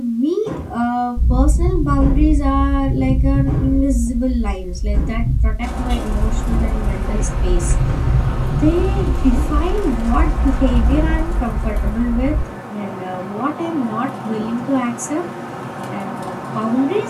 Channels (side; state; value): both; identical; correlation 1.00